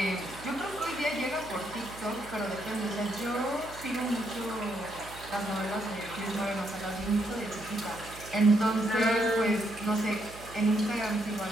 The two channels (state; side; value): noise; right; hum, 17 dB below the sound